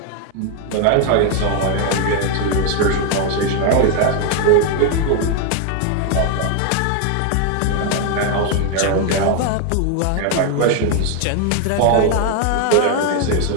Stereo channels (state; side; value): different; both; correlation 0.01